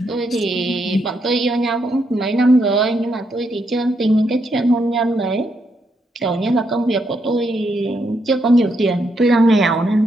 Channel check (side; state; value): both; normal; correlation 0.78